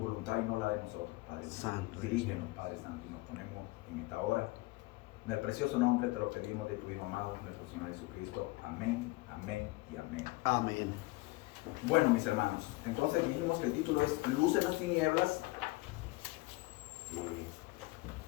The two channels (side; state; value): right; quieter; 21.9 dB